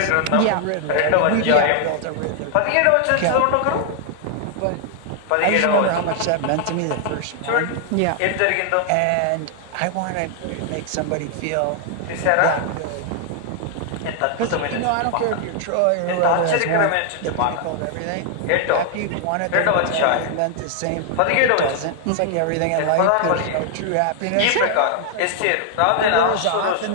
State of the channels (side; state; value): both; different; correlation 0.00